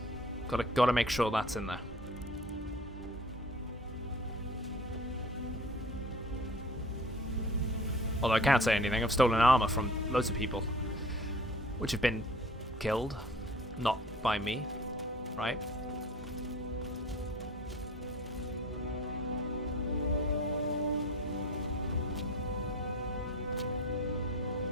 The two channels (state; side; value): normal; both; correlation 0.44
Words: Gotta make sure that's in there. Although I can't say anything, I've stolen armor from loads of people, which have been killed, not by me, right?